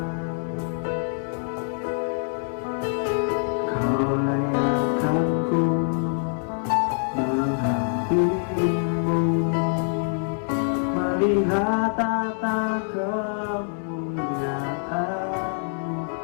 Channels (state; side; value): silent; right; digital silence